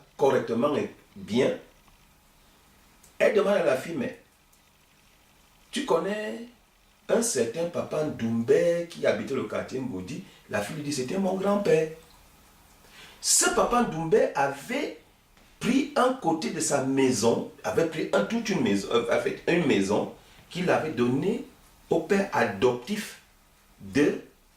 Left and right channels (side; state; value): both; identical; correlation 1.00